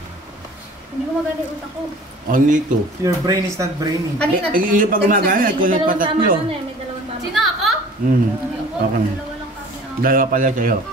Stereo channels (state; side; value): normal; both; correlation 0.46